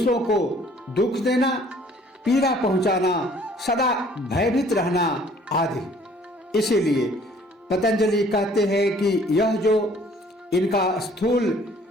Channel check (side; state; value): both; normal; correlation 0.57